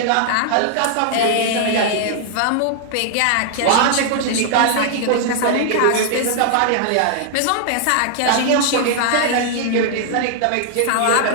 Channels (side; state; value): both; different; correlation 0.00